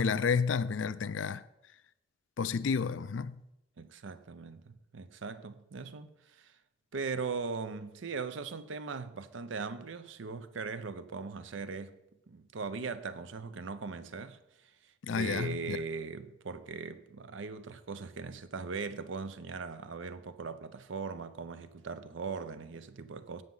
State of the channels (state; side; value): normal; both; correlation 0.20